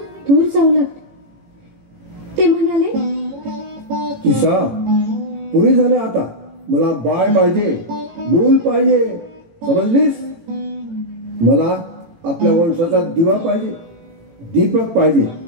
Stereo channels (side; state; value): left; late; 18 ms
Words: दूर जाऊ लागले. ते म्हणाले, किसा, पुरे झाले आता. मला बाळ पाहिजे, मूल पाहिजे, समजलीस? मला आपल्या वंशाचा दिवा पाहिजे, दीपक पाहिजे.